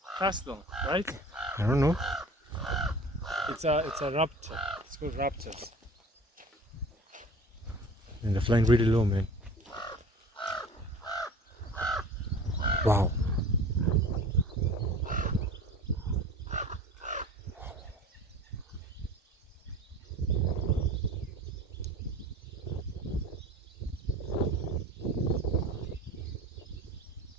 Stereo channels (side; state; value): both; normal; correlation 0.41